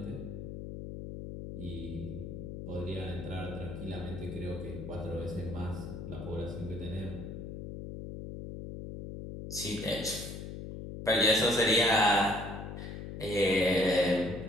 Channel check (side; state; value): left; noise; hum, 8 dB below the sound